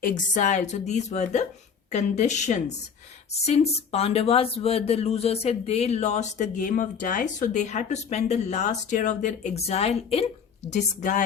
exile. So these were the conditions. Since Pandavas were the losers, they lost the game of dice, so they had to spend the last year of their exile in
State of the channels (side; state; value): right; quieter; 6.6 dB